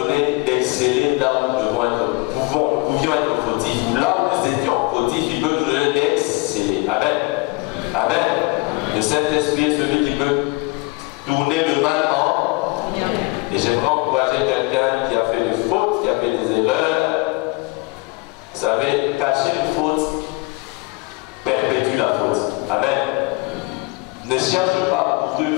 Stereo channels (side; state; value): right; quieter; 25.6 dB